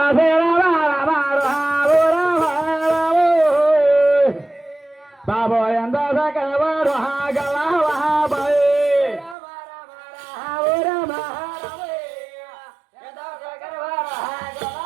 బాబో ఎంత సకవారు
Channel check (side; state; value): left; drops out; at 9.3 s